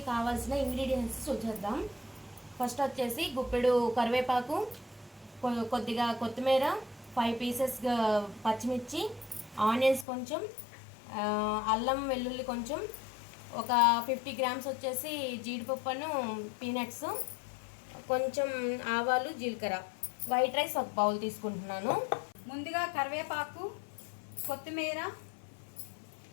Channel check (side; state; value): right; drops out; at 10.1 s